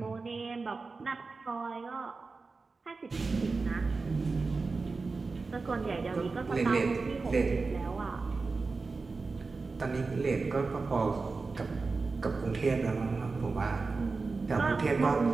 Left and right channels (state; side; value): quieter; left; 4.1 dB